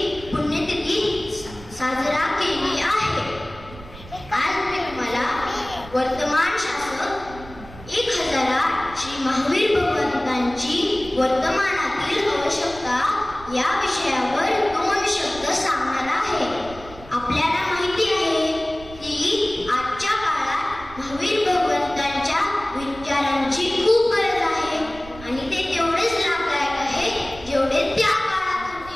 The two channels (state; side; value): noise; right; rumble, 17 dB below the sound